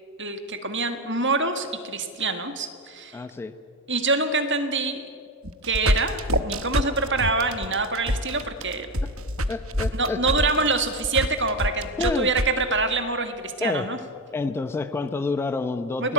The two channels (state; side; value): normal; both; correlation 0.15